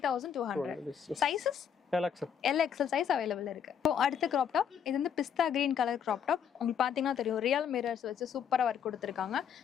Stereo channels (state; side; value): quieter; right; 7.9 dB